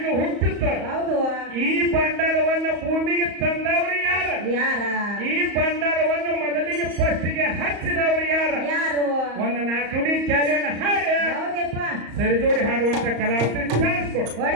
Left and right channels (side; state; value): left; late; 34 ms